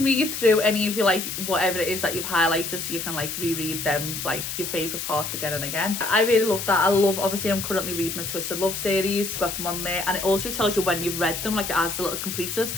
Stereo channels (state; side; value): noise; left; hiss, 5 dB below the sound